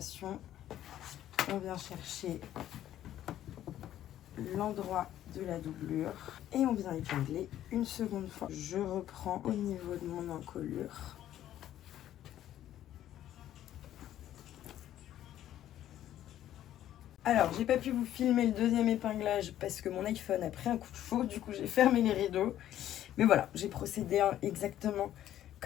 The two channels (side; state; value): right; quieter; 12.1 dB